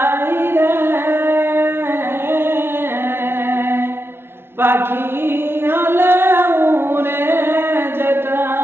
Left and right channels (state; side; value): late; left; 0.11 ms